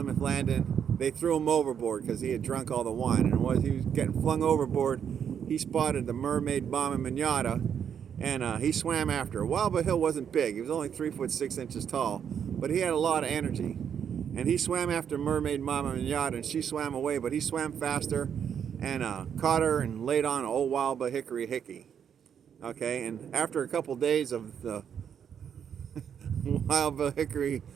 Landing, they threw him overboard because he had drunk all the wine. And as he was getting flung overboard, he spotted the mermaid Mama Minata, and he swam after her. Wild Bill wasn't big. He was only 3 foot 6 inches tall, but he had a lot of energy. And he swam after mermaid Mama Minata, and she swam away, but he swam faster and caught her and laid on old Wild Bill Hickory Hickey. Okay, and after a couple days of the Wild Bill Hickory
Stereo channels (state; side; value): quieter; left; 8.1 dB